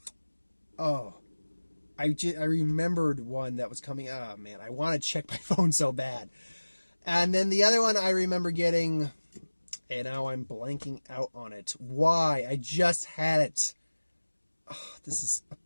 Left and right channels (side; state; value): both; inverted; correlation -1.00